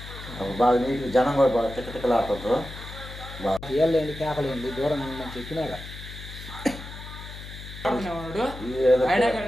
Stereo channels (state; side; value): noise; left; hum, 12 dB below the sound